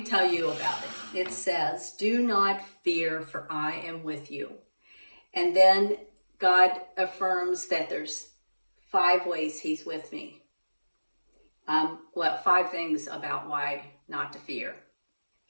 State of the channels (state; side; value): inverted; both; correlation -1.00